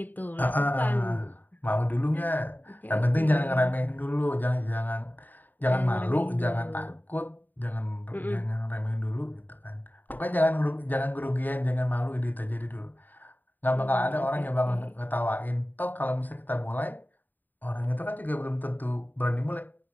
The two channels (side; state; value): right; late; 0.088 ms